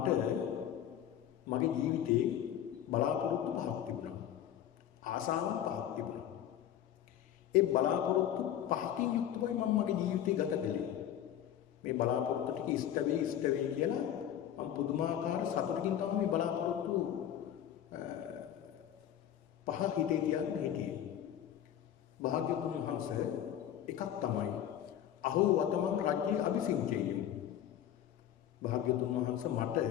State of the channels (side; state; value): right; quieter; 10.7 dB